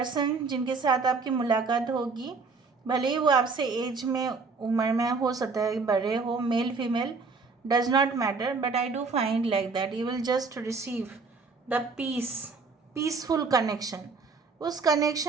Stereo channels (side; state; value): left; quieter; 4.4 dB